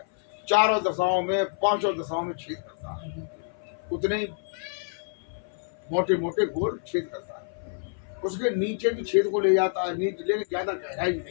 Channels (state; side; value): silent; right; 55 dB below the other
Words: चारों दशाओं में, 5 दशाओं में छेद करता है। उतने ही मोटे मोटे गोल छेद करता है। उसके नीचे भी छेद को ले जाता है, नीचे लेकिन ज्यादा गहराई